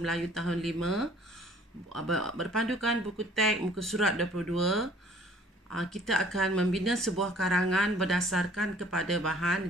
Melayu tahun 5 berpandukan buku teks muka surat 22. Kita akan membina sebuah karangan berdasarkan kepada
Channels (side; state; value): both; normal; correlation 0.55